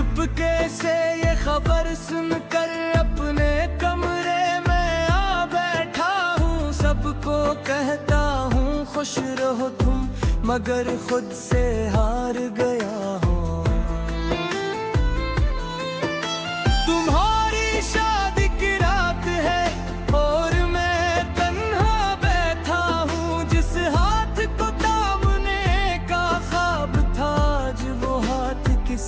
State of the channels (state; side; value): identical; both; correlation 1.00